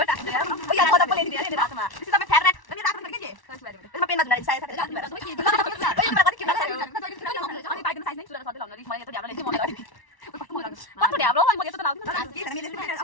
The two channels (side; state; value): right; late; 1.1 ms